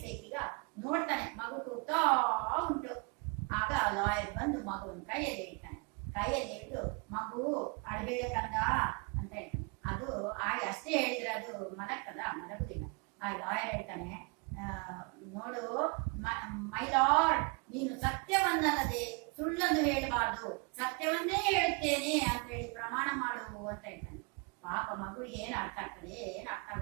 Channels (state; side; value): quieter; left; 32.1 dB